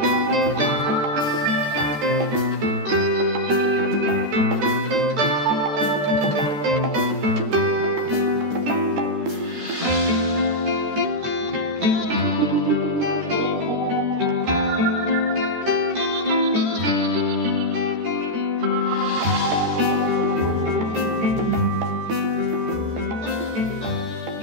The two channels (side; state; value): left; late; 13 ms